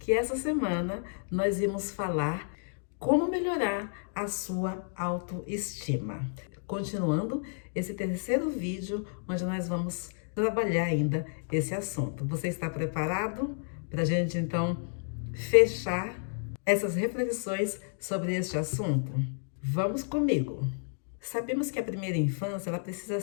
essa semana nós íamos falar como melhorar a sua autoestima. Continuando esse terceiro vídeo, onde nós vamos trabalhar ainda esse assunto. Você está preparado para a gente então fechar essas reflexões sobre este assunto? Vamos comigo! Sabemos que a primeira infância ela precisa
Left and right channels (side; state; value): right; silent; digital silence